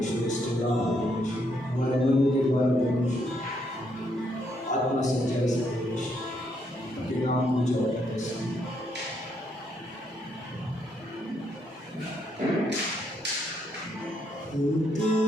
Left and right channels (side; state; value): both; normal; correlation 0.74